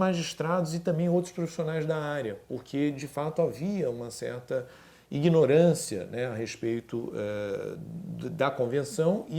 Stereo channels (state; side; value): identical; both; correlation 1.00